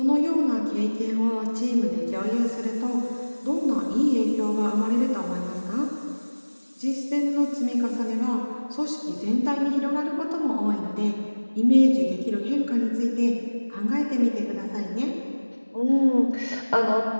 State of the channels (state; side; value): inverted; both; correlation -1.00